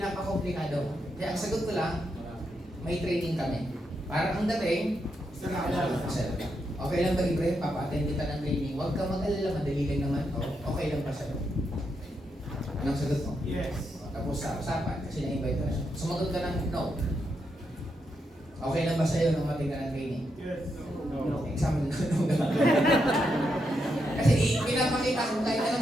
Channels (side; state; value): both; normal; correlation 0.82